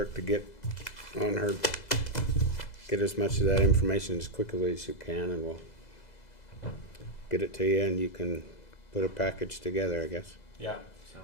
to get on her, get as much of that information as quickly as you can, and we'll get it to you, and you can put a package together, I guess. Yeah,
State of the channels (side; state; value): right; late; 2.0 ms